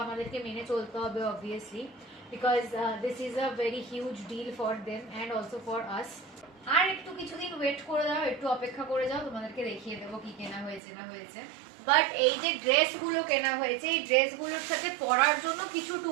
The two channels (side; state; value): left; drops out; at 10.8 s